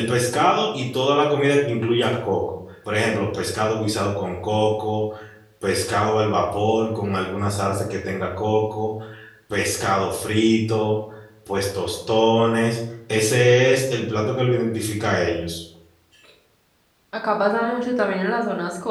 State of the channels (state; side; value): identical; both; correlation 1.00